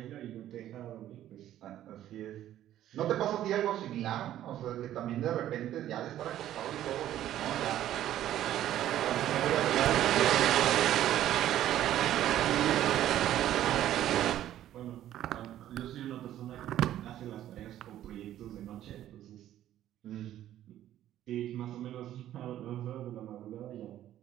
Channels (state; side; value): quieter; left; 12.4 dB